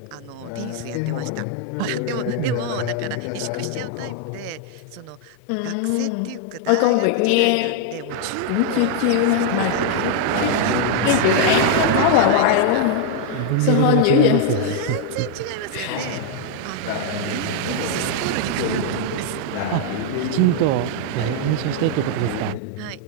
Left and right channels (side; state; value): both; different; correlation 0.00